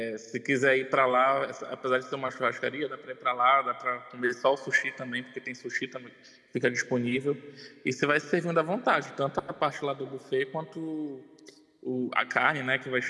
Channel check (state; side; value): identical; both; correlation 1.00